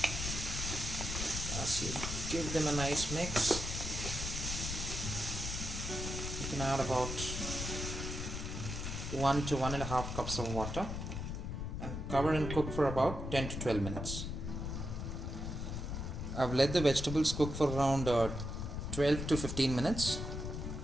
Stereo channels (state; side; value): noise; left; rumble, 4 dB below the sound